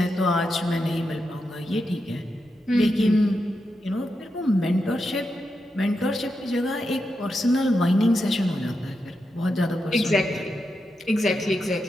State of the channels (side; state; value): both; normal; correlation 0.86